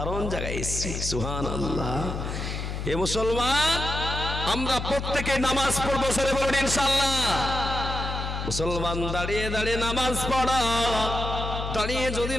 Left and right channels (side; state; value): left; noise; hum, 4 dB below the sound